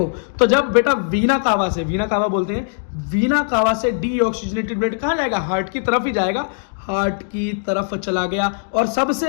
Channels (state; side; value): silent; right; digital silence